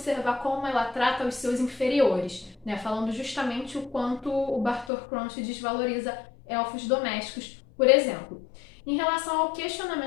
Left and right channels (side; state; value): right; drops out; at 4.9 s